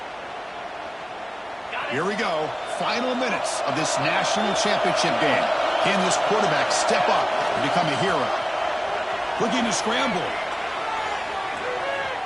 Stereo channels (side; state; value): both; identical; correlation 1.00